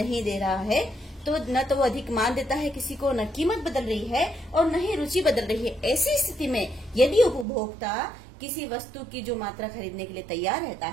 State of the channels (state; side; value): drops out; left; at 7.5 s